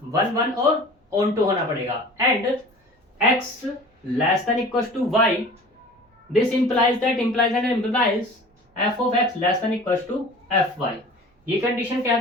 वन वन और ऑन टू होना पड़ेगा and x less than equal to y. This implies that implies and implies f of x less than equal to f y. ये कंडीशन कह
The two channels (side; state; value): both; normal; correlation 0.42